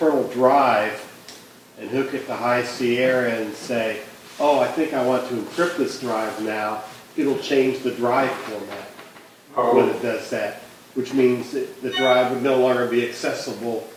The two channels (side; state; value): both; identical; correlation 1.00